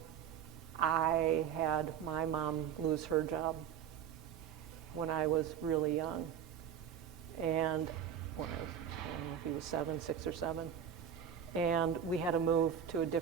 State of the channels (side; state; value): left; quieter; 8.7 dB